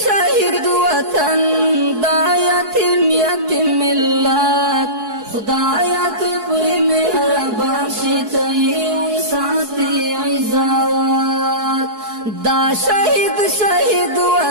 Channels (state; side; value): late; left; 4.6 ms